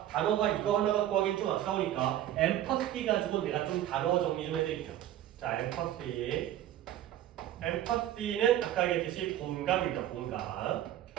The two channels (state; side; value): quieter; left; 12.3 dB